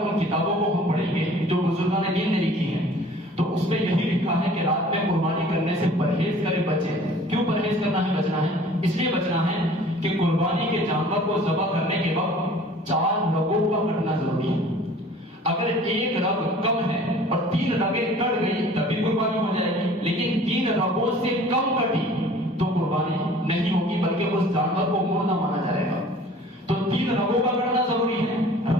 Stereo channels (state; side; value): normal; both; correlation 0.49